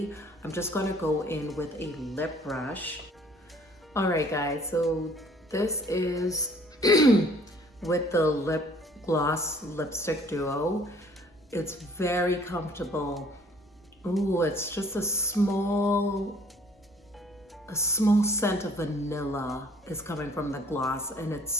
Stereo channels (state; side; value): normal; both; correlation 0.55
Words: I'm just gonna go in with a lip brush. All right, guys, so this is with the lip gloss lipstick duo. It's very comfortable. Ooh, it's just a small scent of vanilla is coming from the gloss, and it's